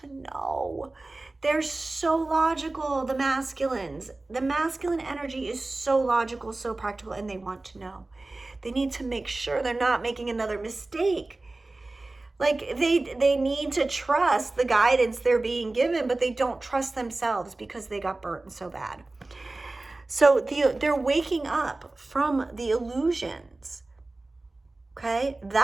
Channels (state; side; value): quieter; left; 3.1 dB